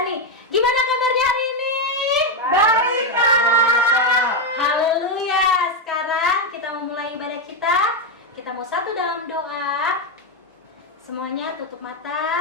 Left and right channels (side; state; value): both; normal; correlation 0.05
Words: nih. Gimana kabarnya hari ini? Baik, Kak. Haleluya. Sekarang kita memulai ibadah kita. Kita mau satu dalam doa. Semuanya tutup